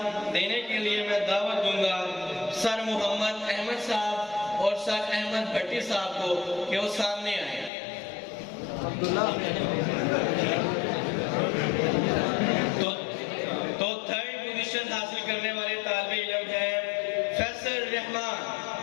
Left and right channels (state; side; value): drops out; right; at 7.7 s